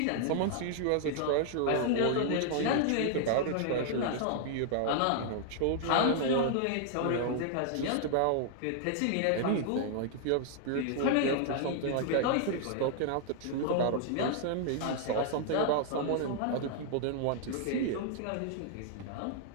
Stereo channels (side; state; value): both; different; correlation 0.00